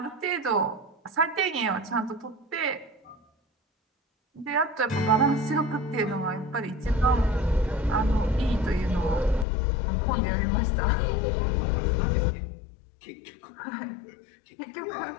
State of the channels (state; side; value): drops out; right; at 9.5 s